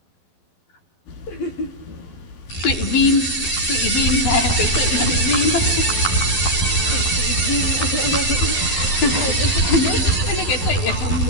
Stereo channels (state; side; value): late; right; 11 ms